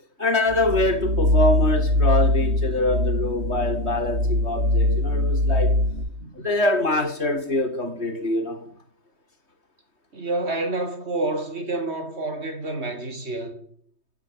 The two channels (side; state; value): left; late; 3.2 ms